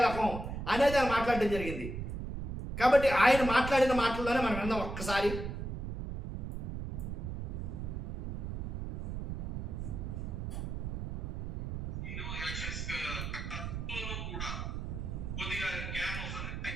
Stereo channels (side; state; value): right; noise; rumble, 5 dB below the sound